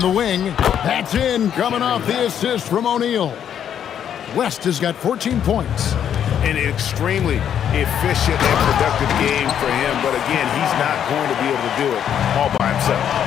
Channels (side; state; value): right; quieter; 9.2 dB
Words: wing. That's in, coming off the assist from O'Neal. West has got 14 points. An extremely efficient and productive game for him, but again, he's not going to be able to do it all by himself.